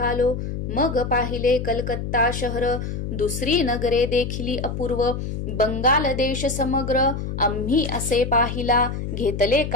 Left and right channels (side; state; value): left; noise; hum, 5 dB below the sound